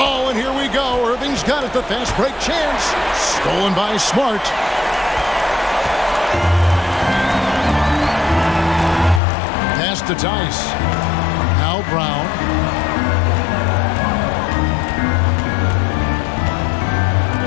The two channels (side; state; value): right; drops out; at 9.2 s